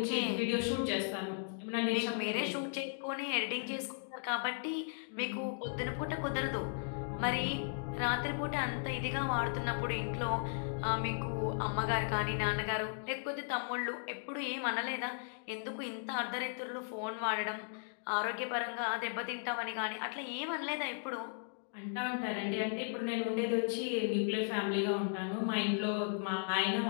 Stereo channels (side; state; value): right; silent; digital silence